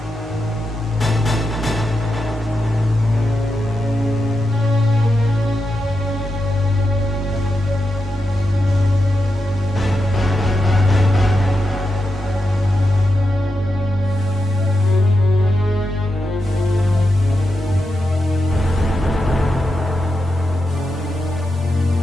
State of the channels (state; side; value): normal; both; correlation 0.87